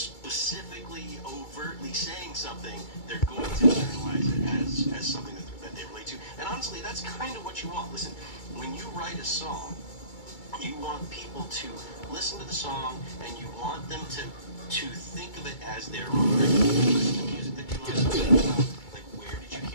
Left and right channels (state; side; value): late; right; 2.3 ms